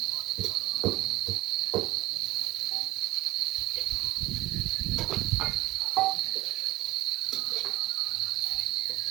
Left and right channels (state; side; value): quieter; left; 17.9 dB